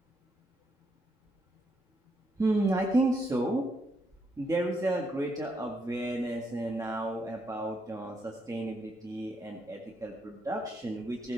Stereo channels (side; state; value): both; normal; correlation 0.77